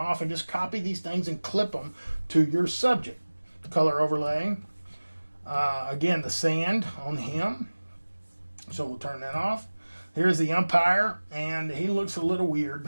and just copy these things and clip them to your subject. Color overlay. Again, the sand on him. So we'll turn that off. Here's the umpire, and he looks a little weird.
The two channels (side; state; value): both; inverted; correlation -1.00